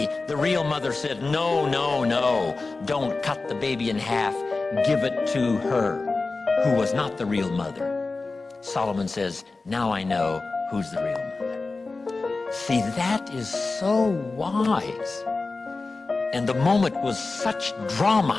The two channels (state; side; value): quieter; right; 3.7 dB